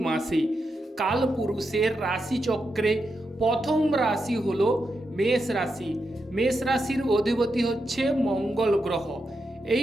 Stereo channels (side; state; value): both; normal; correlation 0.86